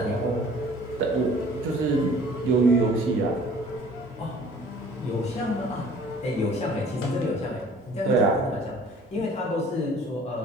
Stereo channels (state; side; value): normal; both; correlation 0.51